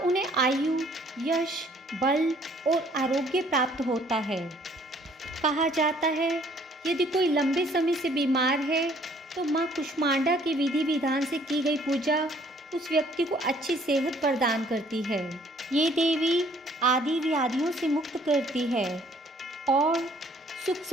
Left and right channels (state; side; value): normal; both; correlation 0.60